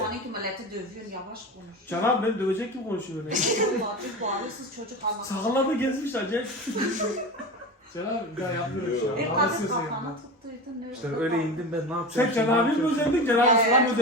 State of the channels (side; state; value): both; normal; correlation 0.27